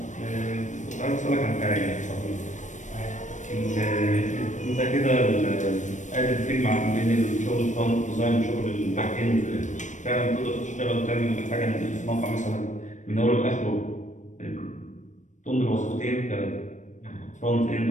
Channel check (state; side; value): late; right; 0.35 ms